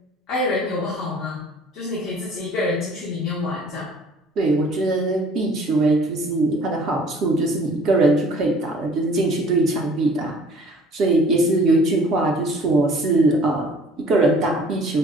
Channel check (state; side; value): normal; both; correlation 0.52